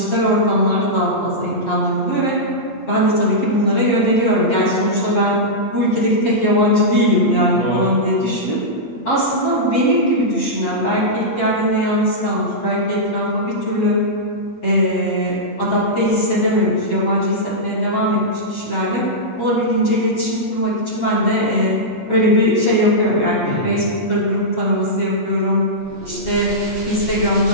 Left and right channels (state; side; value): late; right; 8.6 ms